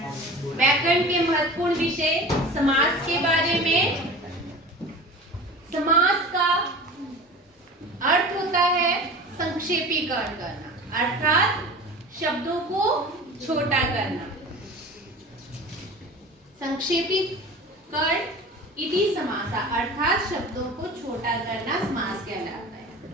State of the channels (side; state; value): both; normal; correlation 0.36